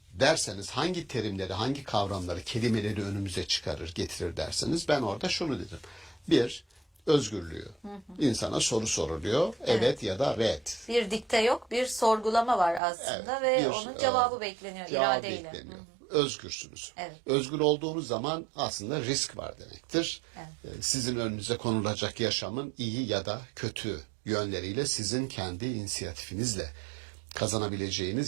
derseniz, hangi terimleri, hangi kavramları, kelimeleri önümüze çıkarır, getirir derseniz ben orada şunu dedim. Bir, özgürlüğü. İnsana soru soruluyor. Evet ya da red. Bir dikte yok, bir sorgulama var aslında ve onun cevabı bekleniyor iradeyle. Özgürsünüz. Evet. Özgür olduğunuz zaman aslında risk var demektir. Evet. Sizin önünüze konulacak yaşamın iyi ya da kötü yönleriyle sizin kendi inisiyatifinizle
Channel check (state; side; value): drops out; left; at 12.8 s